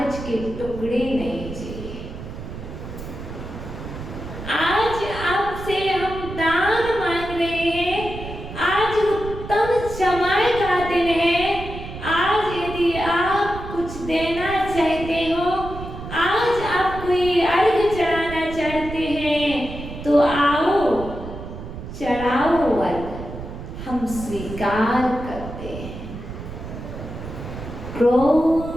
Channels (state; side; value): noise; right; rumble, 10 dB below the sound